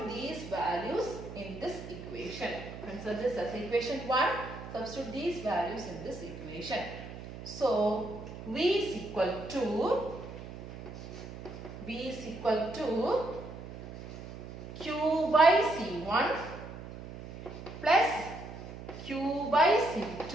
these values in this equation. Consider this as equation 1. Substitute these values in this equation. So, V is equal to Q by C1 plus Q by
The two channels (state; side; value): noise; right; hum, 11 dB below the sound